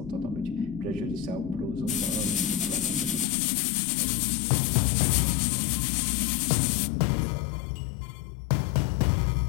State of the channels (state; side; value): drops out; right; at 3.2 s